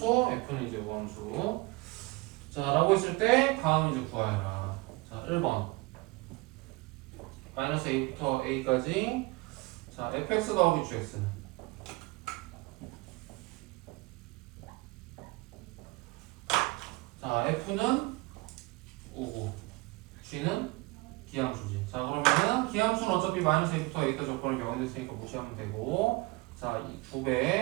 f는 이제 우함수. 자, 라고 했을 때 다음 이제 구하여라. 자, 1번 마이너스 a부터 a까지. 자, fx 더하기 gx는 F는 우고 G는 기함수지. 자 그러면은 기함수는 어차피 마이너스 A부터 A까지 조건을 0이 됐으니까 무시하면 되고 자 이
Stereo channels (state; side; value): quieter; left; 23.9 dB